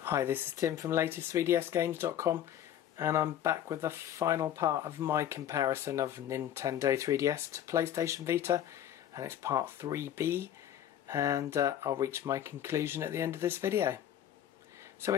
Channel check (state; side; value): quieter; right; 10.7 dB